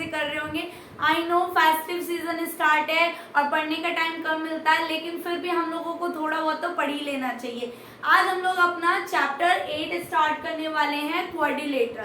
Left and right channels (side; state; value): both; identical; correlation 1.00